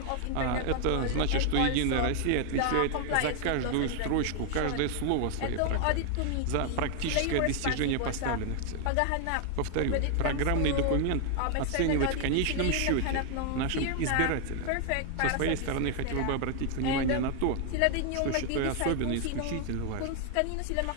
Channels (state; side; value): different; both; correlation 0.00